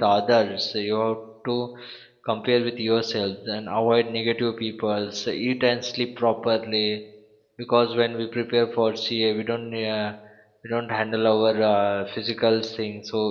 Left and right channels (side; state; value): both; identical; correlation 1.00